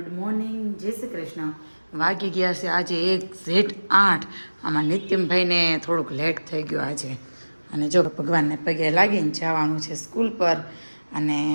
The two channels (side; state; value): both; inverted; correlation -1.00